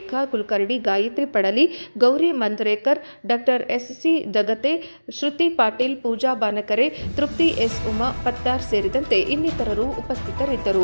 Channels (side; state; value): both; inverted; correlation -1.00